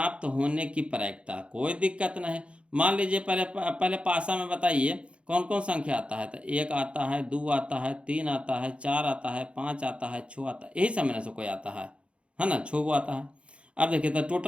होने की प्रायिकता। कोई दिक्कत नहीं। मान लीजिए पहले पासा में बताइए कौन कौन संख्या आता है। तो 1 आता है, 2 आता है, 3 आता है, 4 आता है, 5 आता है, 6 आता है, यही सब में से कोई आता है ना, 6 आता है। अब देखिए तो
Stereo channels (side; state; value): left; late; 0.059 ms